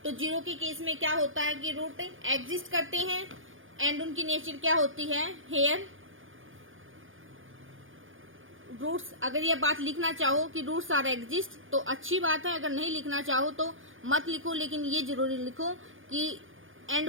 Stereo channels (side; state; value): left; late; 0.58 ms